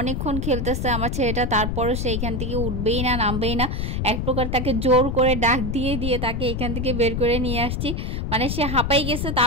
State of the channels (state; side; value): noise; left; rumble, 1 dB below the sound